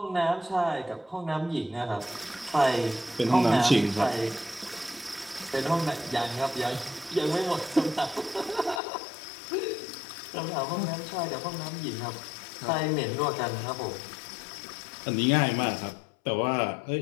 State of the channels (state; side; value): drops out; right; at 8.8 s